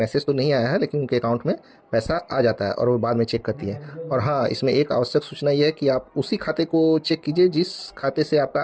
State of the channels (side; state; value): both; identical; correlation 1.00